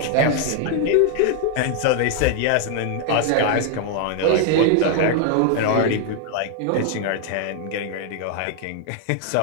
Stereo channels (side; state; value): both; different; correlation 0.00